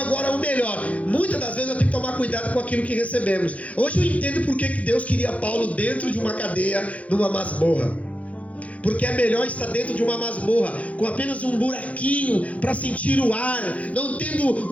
o melhor. Muitas das vezes eu tenho que tomar cuidado com aquilo que recebemos. Hoje eu entendo porque que Deus queria Paulo dentro de uma cadeia, numa masmorra. Porque é melhor estar dentro de uma masmorra com apenas um buraquinho para sentir o ar, não tendo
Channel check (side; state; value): right; late; 0.066 ms